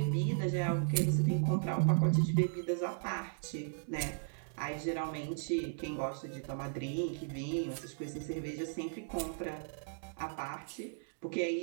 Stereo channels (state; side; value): silent; left; digital silence